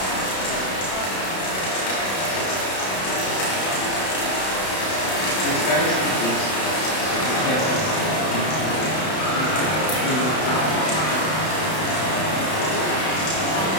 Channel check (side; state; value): right; late; 31 ms